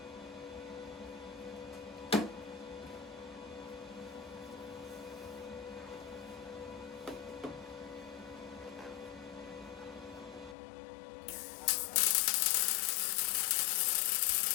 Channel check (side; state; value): right; drops out; at 10.6 s